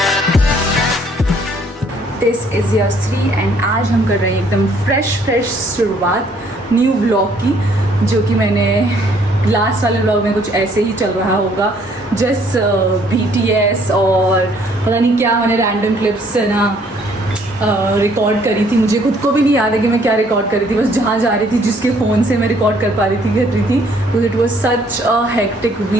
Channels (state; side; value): normal; both; correlation 0.63